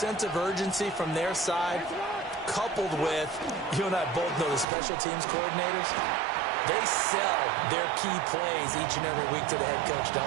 of urgency from their side, coupled with, you and I both know the special teams coordinators, they sell their key plays each and every week to the head coach,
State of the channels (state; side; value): drops out; left; at 4.7 s